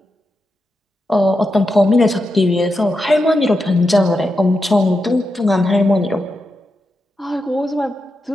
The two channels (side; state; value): both; normal; correlation 0.87